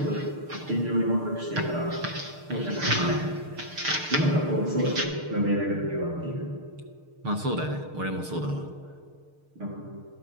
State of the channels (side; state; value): left; late; 6.6 ms